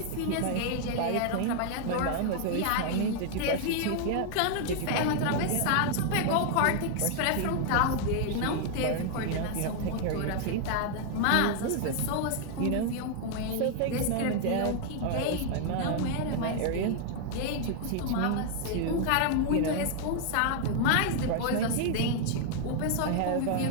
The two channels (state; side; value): different; both; correlation 0.00